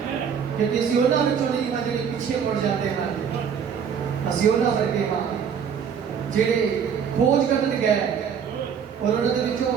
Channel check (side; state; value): left; quieter; 7.4 dB